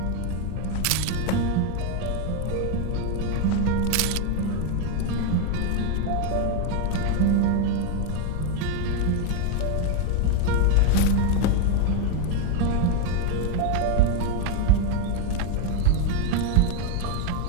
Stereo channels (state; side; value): different; both; correlation 0.01